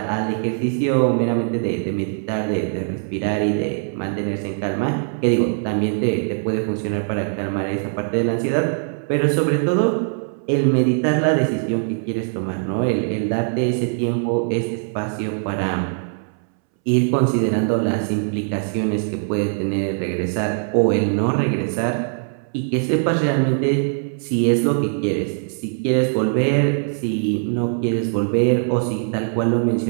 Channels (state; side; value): silent; left; 65 dB below the other